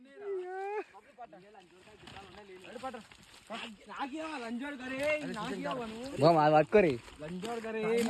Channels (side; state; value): both; identical; correlation 1.00